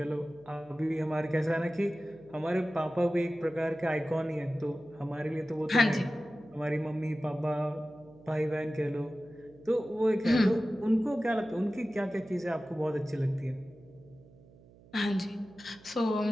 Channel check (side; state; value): right; noise; hum, 24 dB below the sound